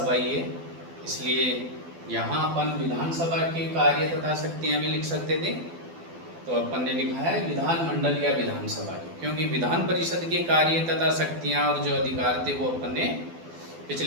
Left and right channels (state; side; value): late; left; 12 ms